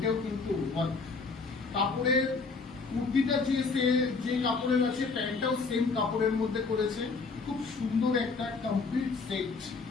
কিন্তু ওয়ার্ক। কাপড়ের কুর্তিটা যে কাপড়ের আছে, প্যান্টটাও সেম কাপড়ের মধ্যে করেছে, খুব সুন্দর একটা কমপ্লিট সেট।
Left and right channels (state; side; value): quieter; right; 4.4 dB